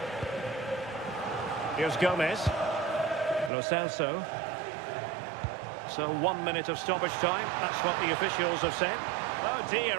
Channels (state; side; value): drops out; left; at 3.5 s